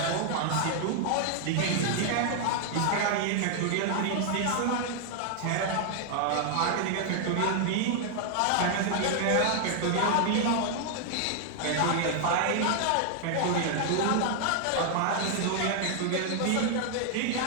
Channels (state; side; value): different; both; correlation 0.00